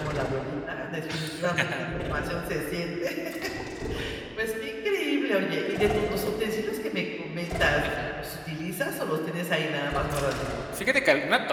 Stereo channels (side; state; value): both; identical; correlation 1.00